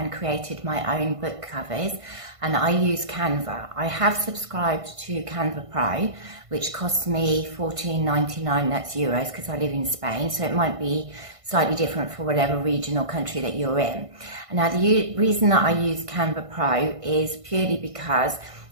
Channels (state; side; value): late; left; 1.5 ms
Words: created my own book covers, and I use Canva. I have subscribed to Canva Pro, which costs me $14.99, that's euros, because I live in Spain, so it might be slightly different for whatever region or country that you're in. Now the reason that I use Canva Pro is purely because